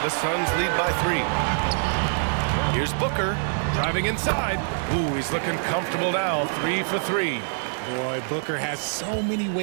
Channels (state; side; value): silent; left; digital silence